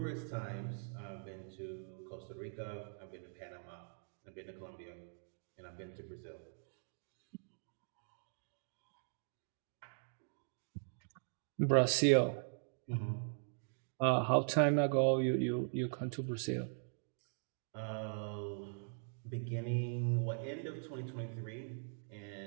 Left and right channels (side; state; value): left; silent; digital silence